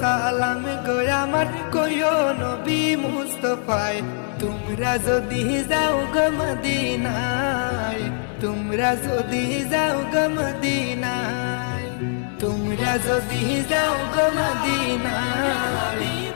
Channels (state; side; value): silent; right; digital silence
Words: সালাম গো আমার, কইও নবী মুস্তাফায়। তোমরা যদি যাও গো মদিনায়, তোমরা যদি যাও গো মদিনায়, তোমরা যদি যাও গো মদিনায়,